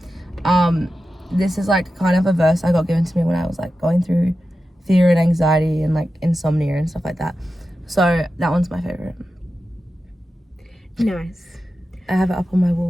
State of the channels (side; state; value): both; normal; correlation 0.92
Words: This is like kind of a verse I got given to me when I was like going through fear and anxiety and like insomnia and stuff like that. So that one's my favorite. Nice. I have it up on my